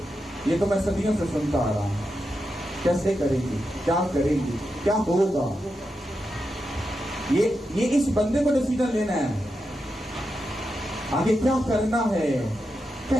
ये तो मैं सदियों से सुनता आ रहा हूं। कैसे करेंगी, क्या करेंगी, क्या होगा, ये इस बंदे को डिसीजन लेना है, आगे क्या करना है,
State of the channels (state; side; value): normal; both; correlation 0.87